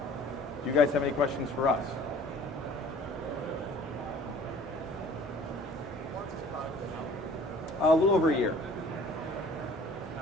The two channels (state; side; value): normal; both; correlation 0.50